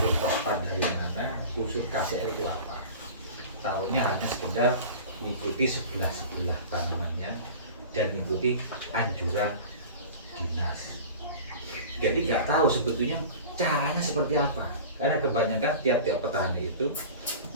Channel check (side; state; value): both; inverted; correlation -0.37